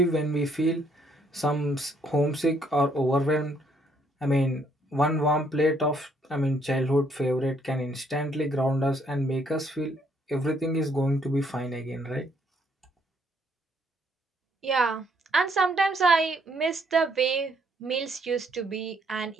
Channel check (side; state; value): both; normal; correlation 0.69